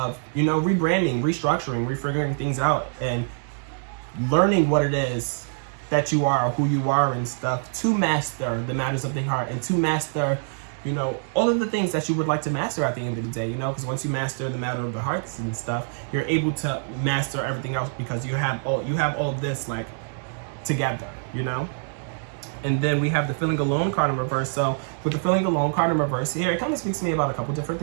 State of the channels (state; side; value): silent; left; 62 dB below the other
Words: you know, rebranding, restructuring, refiguring things out and learning what it is that you are, who you are and stuff, to master the matters of the heart and to master, you know, all of the things that you would like to master at the end of the day, you know, because once you master the matter of the hearts and stuff, you're able to master everything else because you have all of this like together, you know. And then we have the Feeling Alone card in reverse. So with the Feeling Alone card in reverse here, it kind of speaks to me about a couple different